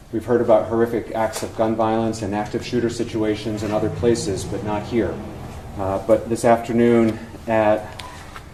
We've heard about horrific acts of gun violence and active shooter situations in other places, but not here. But this afternoon at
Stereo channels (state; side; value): identical; both; correlation 1.00